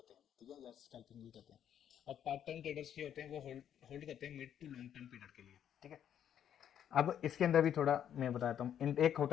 हैं, ठीक है, या स्कैल्पिंग भी कहते हैं। और पार्ट टाइम ट्रेडर्स जो होते हैं वो होल्ड करते हैं mid to long term period के लिए, ठीक है। अब इसके अंदर भी थोड़ा मैं बताता हूँ, एक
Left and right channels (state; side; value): quieter; right; 9.6 dB